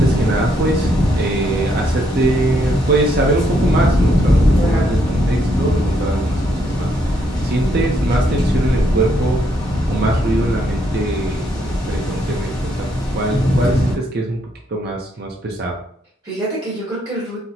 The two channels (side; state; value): both; normal; correlation 0.74